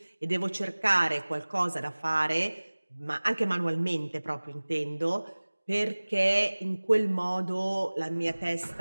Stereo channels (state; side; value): inverted; both; correlation -1.00